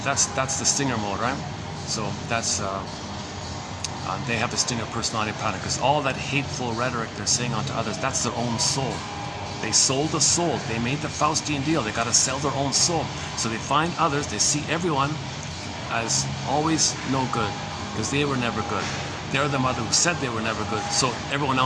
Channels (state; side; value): identical; both; correlation 1.00